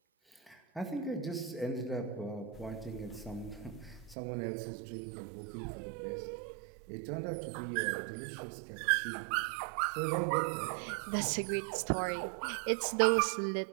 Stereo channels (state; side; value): drops out; left; at 4.2 s